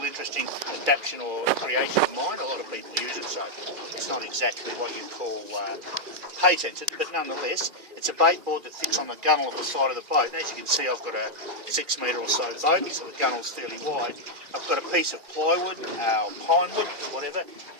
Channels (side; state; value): left; late; 2.4 ms